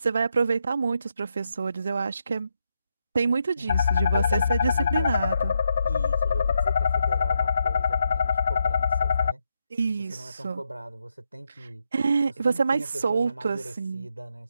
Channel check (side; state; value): both; inverted; correlation -0.82